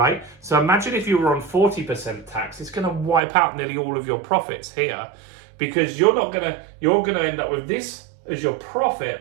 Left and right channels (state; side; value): drops out; left; at 3.2 s